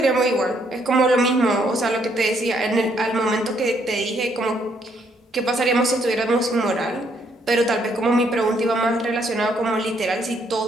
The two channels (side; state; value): both; normal; correlation 0.70